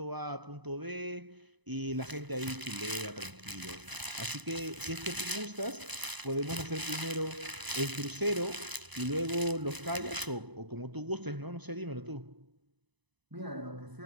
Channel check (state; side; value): late; left; 1.0 ms